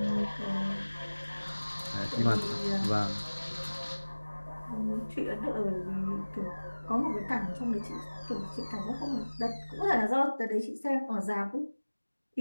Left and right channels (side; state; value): both; inverted; correlation -1.00